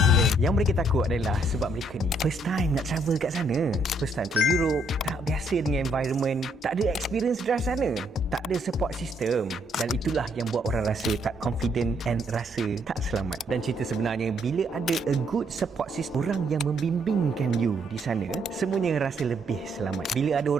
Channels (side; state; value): both; normal; correlation 0.71